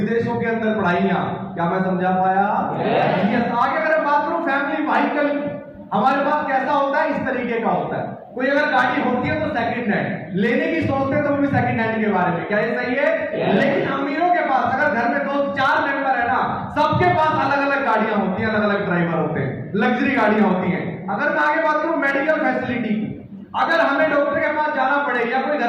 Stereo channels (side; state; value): both; identical; correlation 1.00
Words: के अंदर पढ़ाइयां। क्या मैं समझा पाया? आगे अगर बात करूं फैमिली व्हीकल, हमारे पास कैसा होता है, इस तरीके का होता है। कोई अगर गाड़ी होती है तो सेकंड हैंड लेने की सोचते हैं, तो वो भी सेकंड हैंड के बारे में। क्या ये सही है? लेकिन अमीरों के पास, अगर घर में 2-4 मेंबर है ना, सबके पास अलग अलग गाड़ियां होती हैं, अलग अलग ड्राइवर होते हैं, लग्जरी गाड़ियां होती हैं। अगर मैं आगे बात करूं मेडिकल फैसिलिटी की, अगर हमें डॉक्टर के पास जाना पड़े, या कोई